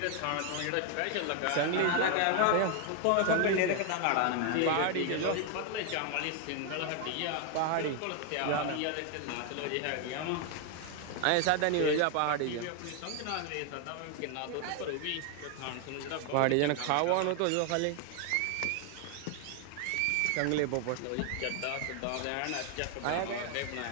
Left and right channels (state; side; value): different; both; correlation 0.01